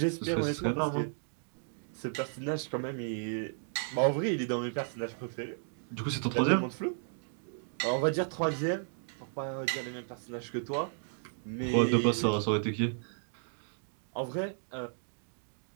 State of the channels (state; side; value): silent; left; digital silence